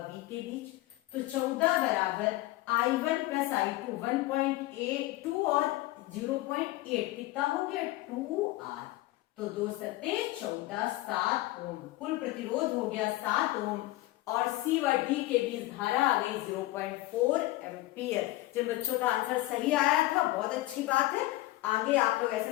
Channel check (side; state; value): right; quieter; 18.3 dB